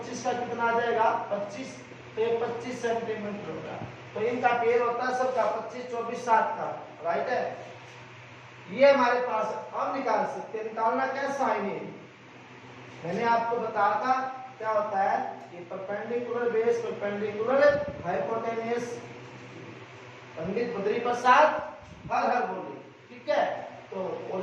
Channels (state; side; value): identical; both; correlation 1.00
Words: का कितना आ जाएगा, 25, तो ये 25 सेंटीमीटर होगा। तो इनका पेयर होता है सबका 25, 24, 7 का, राइट है। ये हमारे पास हम निकाल सकते हैं, निकालना क्या, साइन A। मैंने आपको बताया था क्या होता है, ये perpendicular base, perpendicular hypotenuse, Pandit Badri Prasad हर हर बोले, ठीक है। तो और